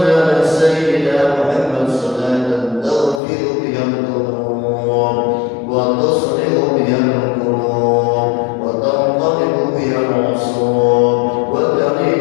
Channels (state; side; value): drops out; right; at 3.2 s